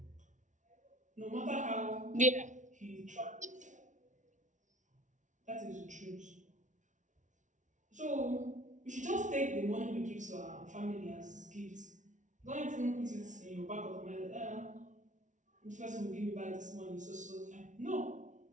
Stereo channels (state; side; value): late; left; 0.36 ms